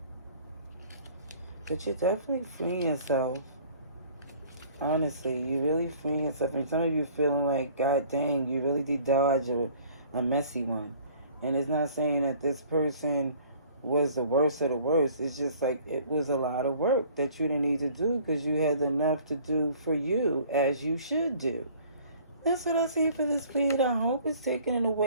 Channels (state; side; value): inverted; both; correlation -0.53